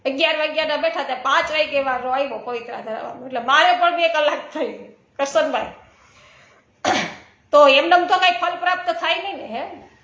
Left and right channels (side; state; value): both; identical; correlation 1.00